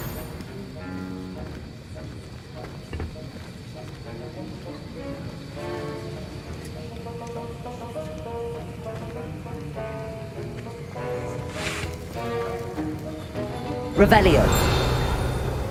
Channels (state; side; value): identical; both; correlation 1.00